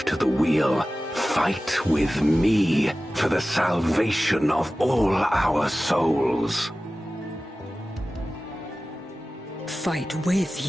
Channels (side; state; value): both; normal; correlation 0.96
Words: to the wheel, fight with me for the salvation of all our souls. Fight with